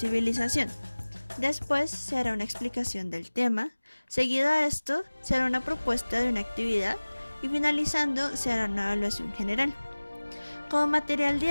después se hará una explicación del tema, seguido a esto se hará una propuesta de una actividad y finalizando se hará una evaluación general. Como material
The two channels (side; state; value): both; inverted; correlation -1.00